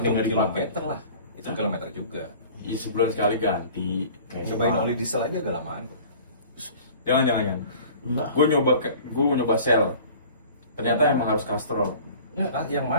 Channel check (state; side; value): inverted; both; correlation -0.45